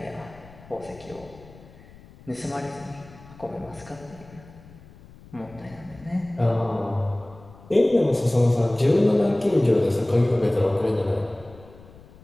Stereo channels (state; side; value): noise; left; rumble, 22 dB below the sound